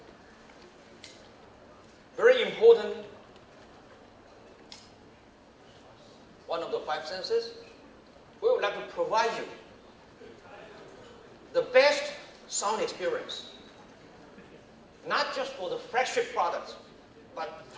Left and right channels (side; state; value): both; identical; correlation 1.00